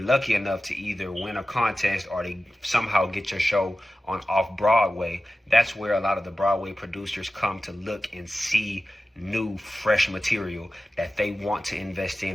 lucky enough to either win a contest or to somehow get your show on off Broadway, that's where a lot of the Broadway producers come to look and see new, fresh material that they want to invest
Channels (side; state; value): both; normal; correlation 0.94